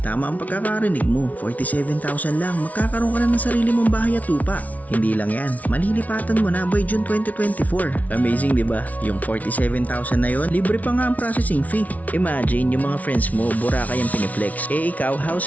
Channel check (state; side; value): late; right; 0.071 ms